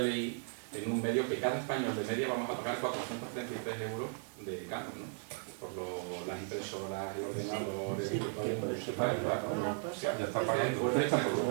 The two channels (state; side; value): silent; left; 54 dB below the other